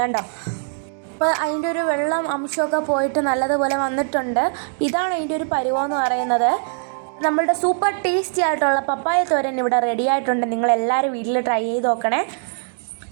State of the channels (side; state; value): left; silent; digital silence